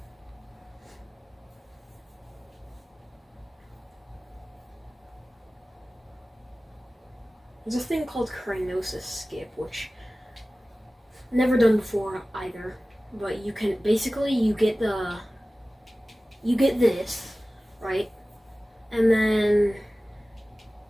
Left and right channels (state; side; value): normal; both; correlation 0.97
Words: There's a thing called cryonis skip, which I've never done before either. But you can basically you get this, right? And then